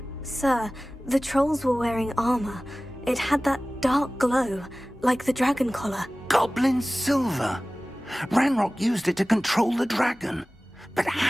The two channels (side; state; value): both; normal; correlation 0.98